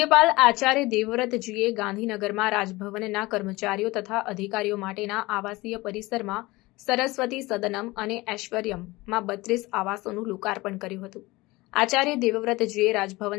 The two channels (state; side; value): quieter; right; 21.1 dB